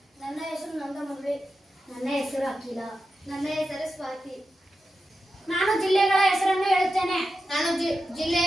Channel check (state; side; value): normal; both; correlation 0.90